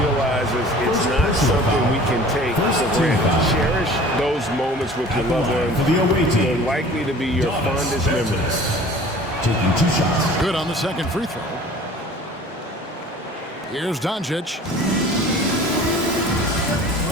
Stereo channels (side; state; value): both; normal; correlation 0.46